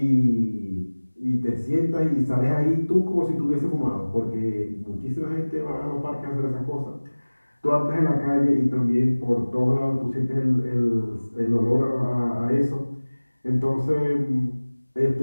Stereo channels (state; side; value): inverted; both; correlation -1.00